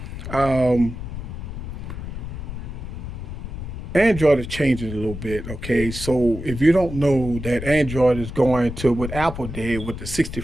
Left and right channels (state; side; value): noise; left; rumble, 8 dB below the sound